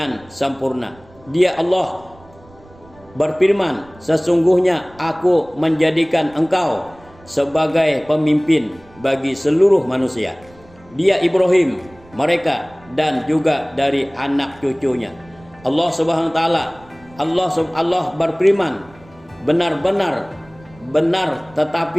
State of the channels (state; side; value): noise; right; rumble, 25 dB below the sound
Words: sempurna. Dia Allah berfirman, sesungguhnya aku menjadikan engkau sebagai pemimpin bagi seluruh manusia. Dia Ibrahim, mereka dan juga dari anak cucunya. Allah Subhanahu wa taala, Allah berfirman, benar-benar benar,